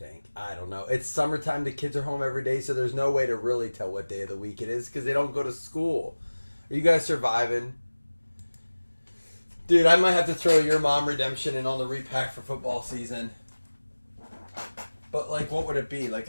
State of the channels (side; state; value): both; inverted; correlation -1.00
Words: I don't know. It's summertime. The kids are home every day, so there's no way to really tell what day of the week it is because they don't go to school. Are you guys surviving? Dude, I might have to throw your mom redemption in on the repack for football season. But, like, what would it be? Like